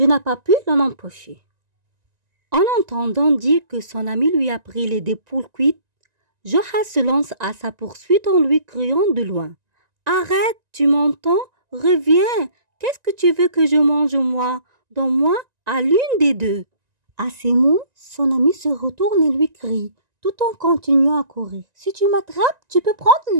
n'ai pas pu l'en empêcher. En entendant dire que son ami lui a pris les deux poules cuites, Joha se lance à sa poursuite en lui criant de loin. « Arrête, tu m'entends? Reviens! Qu'est-ce que tu veux que je mange moi? Donne-moi à l'une des deux. » À ces mots, son ami se retourne et lui crie, tout en continuant à courir. « Si tu m'attrapes, tu peux prendre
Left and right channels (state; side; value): late; left; 1.9 ms